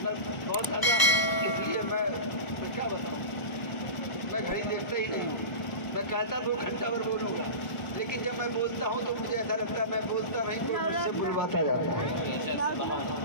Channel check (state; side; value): late; right; 1.0 ms